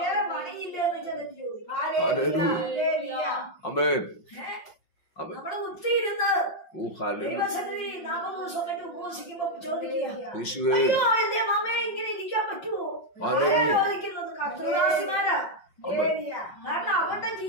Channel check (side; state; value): right; late; 5.6 ms